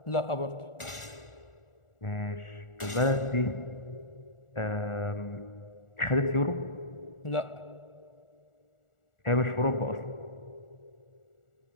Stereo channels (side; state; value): right; late; 1.4 ms